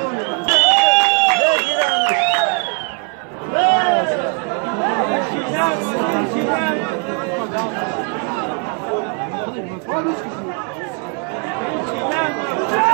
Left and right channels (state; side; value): quieter; left; 37.7 dB